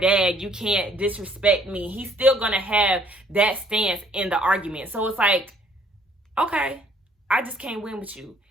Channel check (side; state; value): both; normal; correlation 0.62